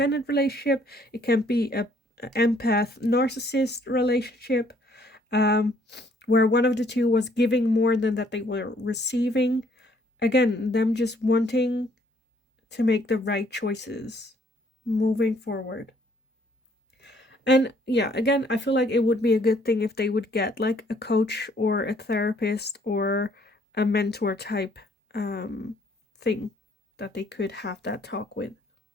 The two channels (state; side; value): normal; both; correlation 0.64